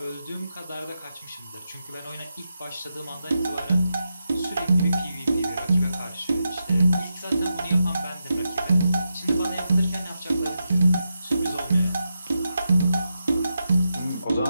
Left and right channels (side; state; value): both; inverted; correlation -0.87